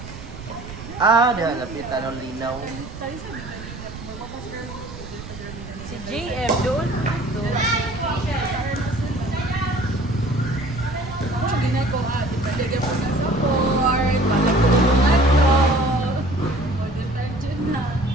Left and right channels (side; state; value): right; noise; rumble, 12 dB below the sound